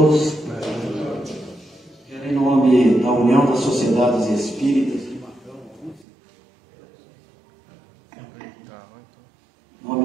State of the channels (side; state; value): left; drops out; at 6.1 s